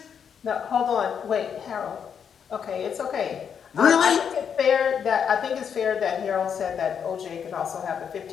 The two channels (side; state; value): right; quieter; 7.5 dB